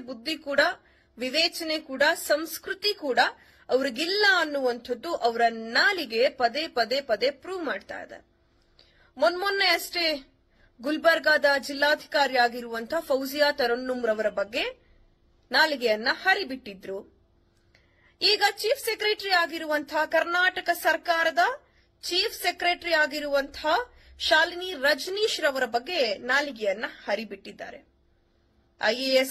ಕೂಡ, ವಿವೇಚನೆ ಕೂಡ, ಸಂಸ್ಕೃತಿ ಕೂಡ ಅವ್ರಿಗಿಲ್ಲ ಅನ್ನುವಂಥದ್ದು ಅವರ ನಾಲಿಗೆ ಪದೇ ಪದೇ ಪದೇ ಪ್ರೂವ್ ಮಾಡ್ತಾ ಇದೆ. ಮೊನ್ನೆ ಅಷ್ಟೇ ಗುಲ್ಬರ್ಗಾದ ಜಿಲ್ಲಾಧಿಕಾರಿ ಆಗಿರುವಂತಹ ಫೌಜಿಯಾ ತರನ್ನುಮ್ ರವರ ಬಗ್ಗೆ ನಾಲಿಗೆಯನ್ನ ಹರಿಬಿಟ್ಟಿದ್ರು. ಈಗ ಚೀಫ್ ಸೆಕ್ರೆಟರಿ ಆಗಿರುವಂತಹ ಕರ್ನಾಟಕ ಸರ್ಕಾರದ ಚೀಫ್ ಸೆಕ್ರೆಟರಿ ಆಗಿರುವಂತಹ ಶಾಲಿನಿ ರಜನೀಶ್ ರವರ ಬಗ್ಗೆ ನಾಲಿಗೆಯನ್ನ ಹರಿಬಿಟ್ಟಿದ್ದಾರೆ.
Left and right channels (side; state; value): both; identical; correlation 1.00